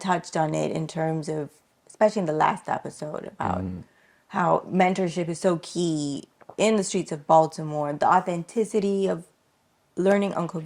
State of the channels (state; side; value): identical; both; correlation 1.00